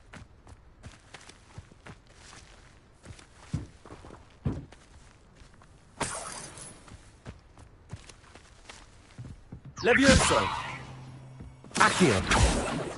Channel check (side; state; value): both; identical; correlation 1.00